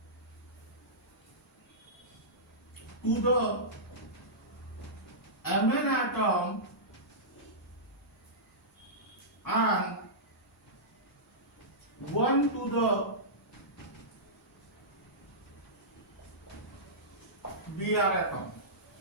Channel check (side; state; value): both; normal; correlation -0.16